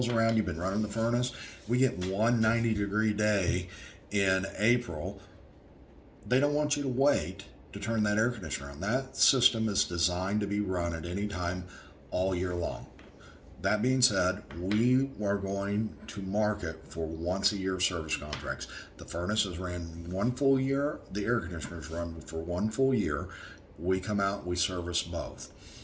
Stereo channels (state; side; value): identical; both; correlation 1.00